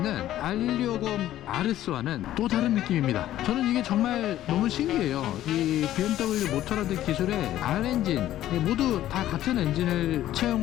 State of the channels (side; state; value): right; quieter; 13.2 dB